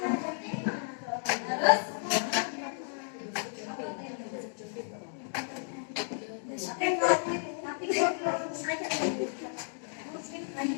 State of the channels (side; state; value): right; silent; digital silence